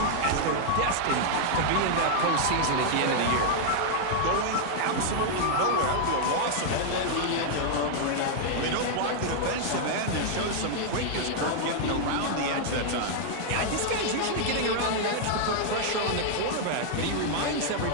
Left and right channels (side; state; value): both; different; correlation -0.01